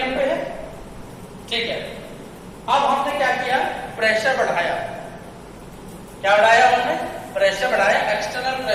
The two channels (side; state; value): both; identical; correlation 1.00